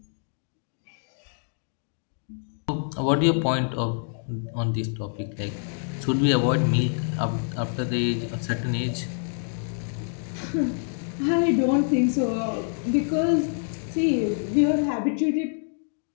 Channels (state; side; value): silent; right; digital silence